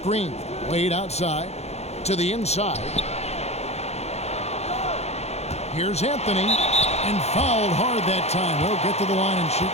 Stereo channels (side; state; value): right; late; 0.31 ms